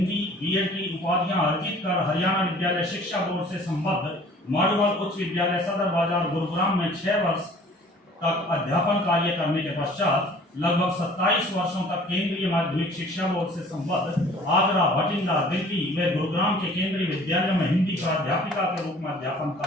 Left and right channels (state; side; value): normal; both; correlation 0.50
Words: बीएड की उपाधियां अर्जित कर हरियाणा विद्यालय शिक्षा बोर्ड से संबद्ध माडुवाल उच्च विद्यालय सदर बाजार गुरुग्राम में 6 वर्ष तक अध्यापन कार्य करने के पश्चात लगभग 27 वर्षों तक केंद्रीय माध्यमिक शिक्षा बोर्ड से संबद्ध आगरा, भटिंडा, दिल्ली व गुरुग्राम के केंद्रीय विद्यालयों में हिंदी प्राध्यापिका के रूप में अध्यापन